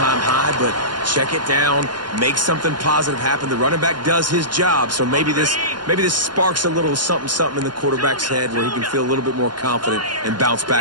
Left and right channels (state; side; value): late; left; 0.71 ms